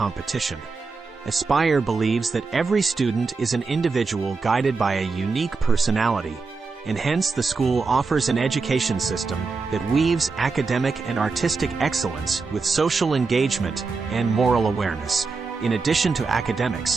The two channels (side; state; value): left; quieter; 4.4 dB